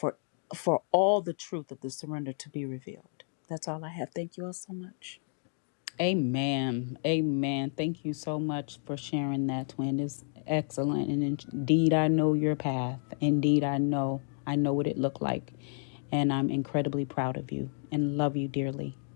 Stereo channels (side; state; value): right; silent; digital silence